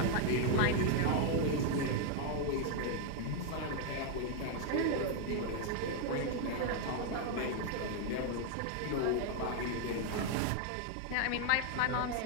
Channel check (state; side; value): different; both; correlation 0.01